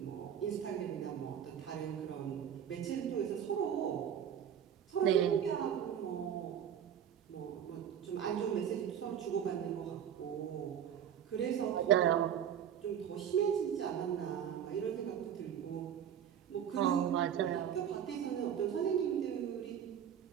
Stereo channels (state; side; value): quieter; left; 9.2 dB